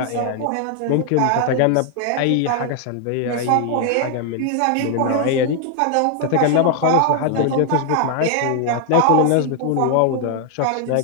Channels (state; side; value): different; both; correlation 0.00